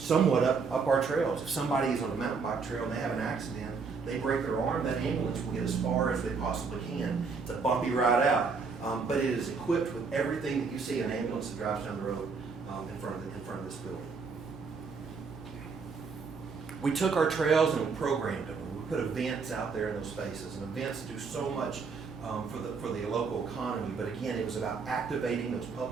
up our trails. If somebody is on a mountain bike trail and they have an accident, they break their arm, that ambulance will get as far as they possibly can. It's a bumpy ride out, but it is equipped with everything that you see an ambulance that drives down the road in front of this building. We took our trails and we programmed them. We put events out there in those spaces, and events do so much for the local economy. But again, it was about activating those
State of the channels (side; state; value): left; quieter; 5.0 dB